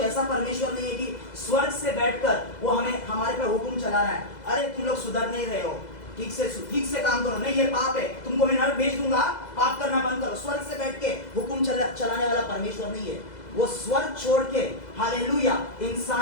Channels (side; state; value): right; late; 2.0 ms